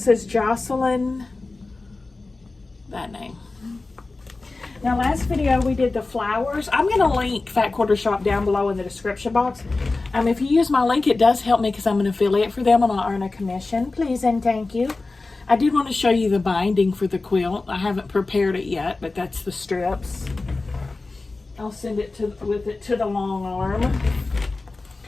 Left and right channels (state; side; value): quieter; right; 3.5 dB